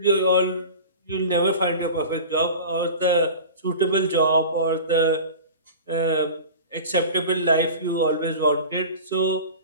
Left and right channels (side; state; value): both; inverted; correlation -0.36